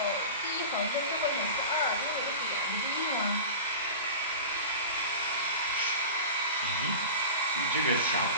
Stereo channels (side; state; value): both; inverted; correlation -0.32